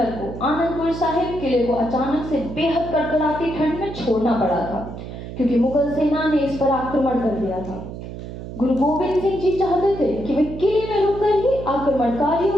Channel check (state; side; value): noise; right; hum, 10 dB below the sound